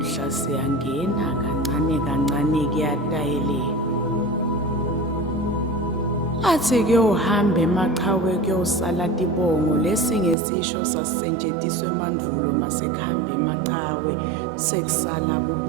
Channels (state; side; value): drops out; left; at 10.4 s